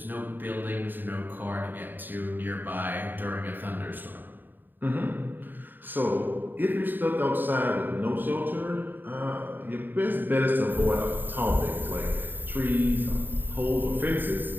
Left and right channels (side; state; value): left; late; 0.091 ms